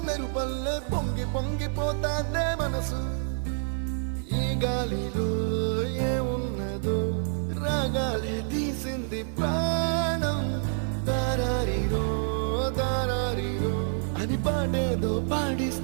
మెరుపల్లే పొంగి పొంగిపోతాందే మనసు ఈ గాలిలో ఏమున్నదో రాగాలే తీసింది ప్రాణం దారారిరో దారారిరో అని పాడేదో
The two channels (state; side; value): silent; left; 58 dB below the other